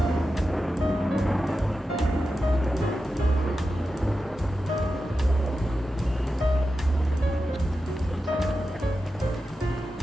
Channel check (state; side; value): normal; both; correlation 0.91